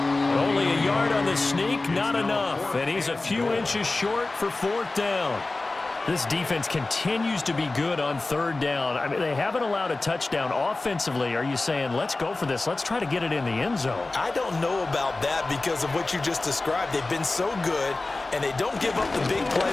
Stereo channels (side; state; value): right; quieter; 3.2 dB